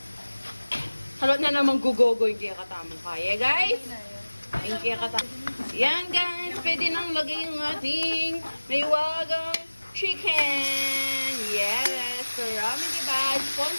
Halot na naman gugogo yung kaya katamang kaya, guys. Yung kaya katamang. Yan, guys. Pwede nang lagay yung ating may wagang chicken. Yes. So, ramen diba?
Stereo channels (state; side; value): inverted; both; correlation -1.00